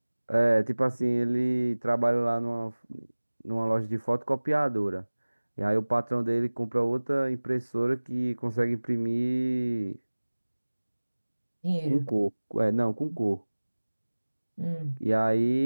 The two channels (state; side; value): inverted; both; correlation -1.00